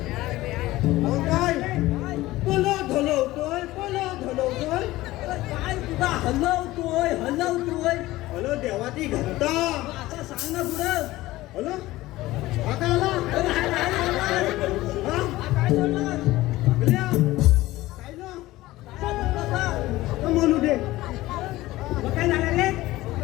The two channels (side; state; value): right; quieter; 17.6 dB